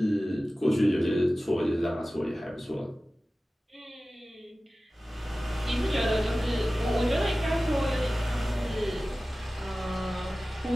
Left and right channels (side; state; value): both; normal; correlation 0.96